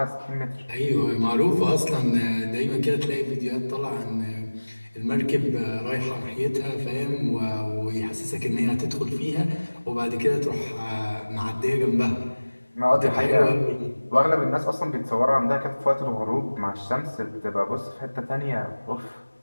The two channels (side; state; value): both; inverted; correlation -1.00